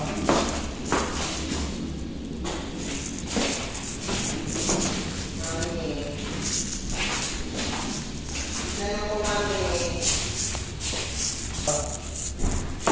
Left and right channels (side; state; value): both; identical; correlation 1.00